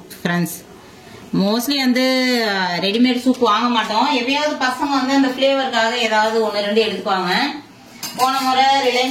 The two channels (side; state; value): both; identical; correlation 1.00